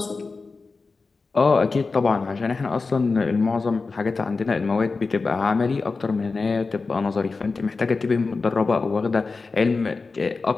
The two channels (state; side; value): quieter; right; 4.1 dB